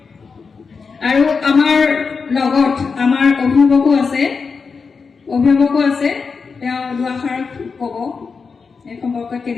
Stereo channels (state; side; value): quieter; right; 5.1 dB